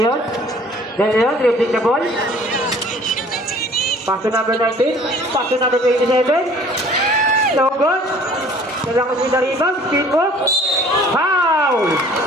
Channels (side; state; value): both; normal; correlation 0.52